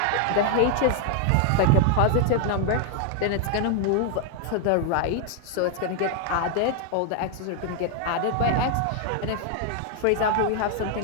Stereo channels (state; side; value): different; both; correlation 0.00